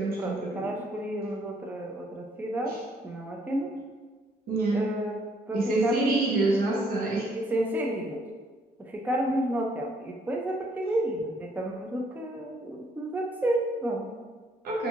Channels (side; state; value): both; normal; correlation 0.67